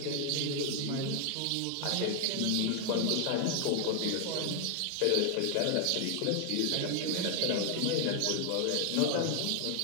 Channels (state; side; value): different; both; correlation 0.00